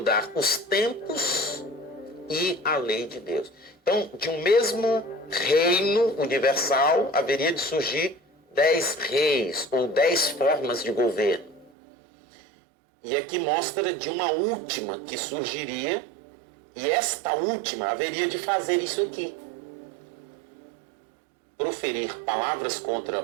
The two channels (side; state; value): left; drops out; at 11.7 s